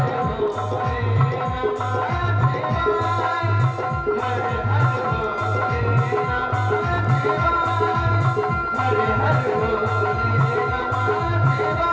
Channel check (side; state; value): both; identical; correlation 1.00